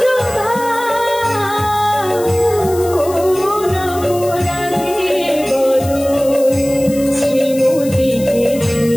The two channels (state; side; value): noise; left; hiss, 15 dB below the sound